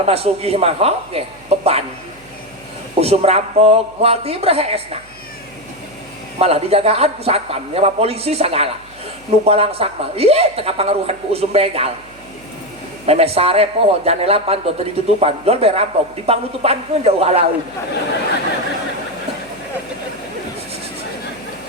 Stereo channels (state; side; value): noise; right; hum, 26 dB below the sound